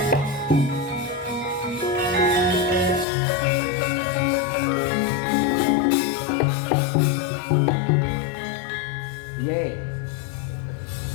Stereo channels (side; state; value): right; drops out; at 3.1 s